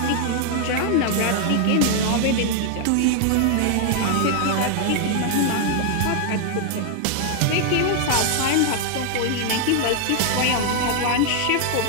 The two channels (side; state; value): both; different; correlation 0.00